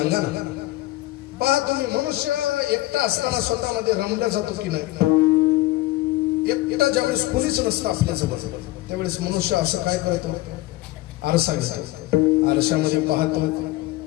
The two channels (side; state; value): right; quieter; 17.8 dB